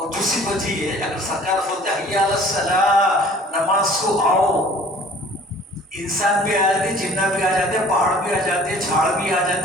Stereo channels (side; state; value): both; normal; correlation 0.50